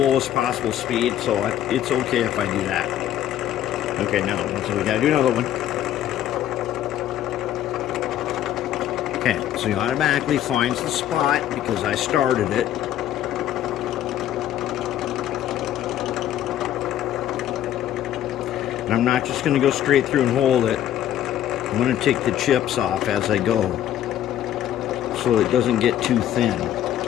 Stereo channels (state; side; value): quieter; right; 11.6 dB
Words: possible speed, so it's okay if I do that. Okay, now, so we gotta do another one. Okay, so he automatically finds the spot because I started it. And I'm not just going to go straight through and hold it. I'm going to take the chips off as I go so it doesn't get too thin.